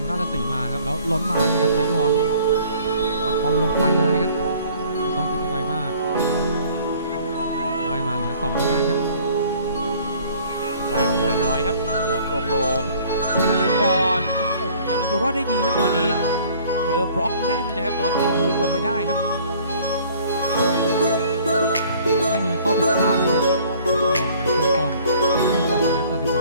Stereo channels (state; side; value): inverted; both; correlation -0.54